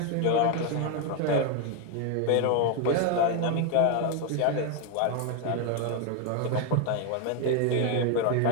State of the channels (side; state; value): both; different; correlation 0.01